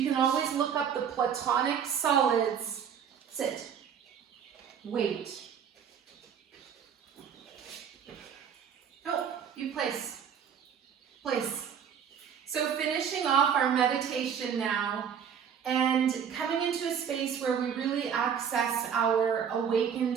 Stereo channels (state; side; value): quieter; left; 7.7 dB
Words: can always look up the platonic solids. Sit. Wait. Oh. You place. So finishing off our meditation now and coming into a space where we really access our